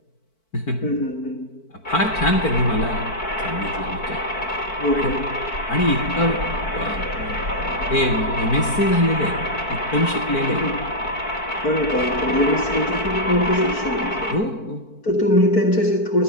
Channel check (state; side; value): late; right; 4.5 ms